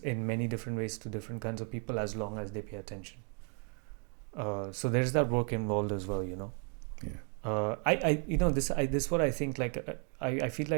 many different ways to different kinds of people as long as they pay attention. So there's that work involved as well. Yeah. This is what I think. Like I feel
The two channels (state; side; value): quieter; left; 39.1 dB